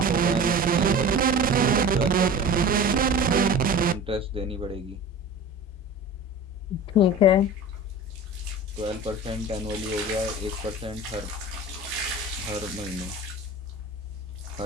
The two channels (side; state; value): both; normal; correlation 0.35